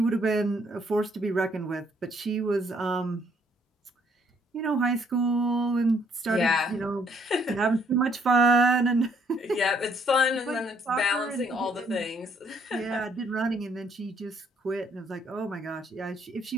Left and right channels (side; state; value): both; normal; correlation 0.67